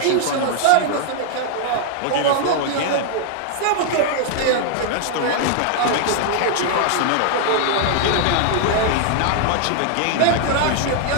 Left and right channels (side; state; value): both; different; correlation 0.00